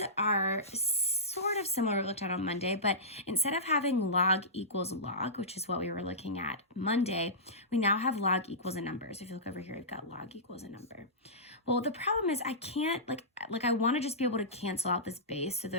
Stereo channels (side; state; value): both; normal; correlation -0.18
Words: are sort of similar to what we looked at on Monday, but instead of having log equals log, which is what we were looking at Monday, we now have log equals a number. So if you look over here, we've got log equals a number. Well, the problem is I can't, I want to just be able to cancel out this base so